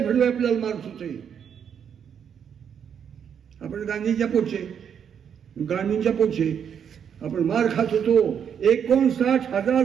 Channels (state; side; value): quieter; left; 8.0 dB